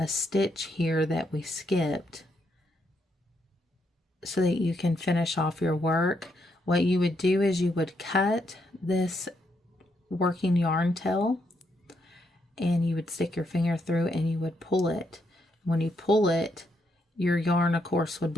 stitch here that we skipped so that you can finish off your work. What you would do is you would cut this working yarn tail, and you would stick your finger through and you would pull it. When you pull it, your yarn, of course, would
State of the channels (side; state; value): both; normal; correlation 0.78